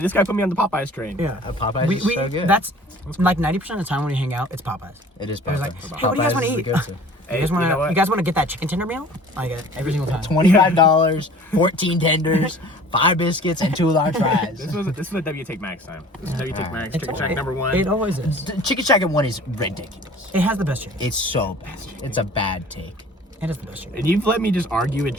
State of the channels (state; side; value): normal; both; correlation 0.47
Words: guy put me on the Popeyes train. Yeah, Popeyes is so good. That's like 90% of the time when we hang out, it's Popeyes. It is I was Popeyes. like, hey, what do you guys want to eat? Hey, You guys want you know to? what? You guys want to get that chicken tender meal? I get it every single time. $25, 14 tenders, 5 biscuits, and 2 large fries. This was a W Take Max time. This is W Take Max. It's- Chicken Shack number 1. It always is. Chicken Shack at 1 is ridiculous. It has the best chicken. It's so bad. It's a bad take. It has the best chicken. And you've let me just argue with